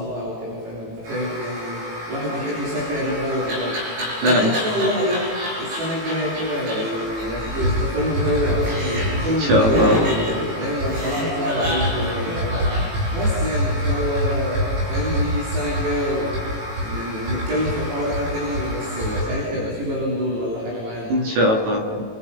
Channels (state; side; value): late; left; 18 ms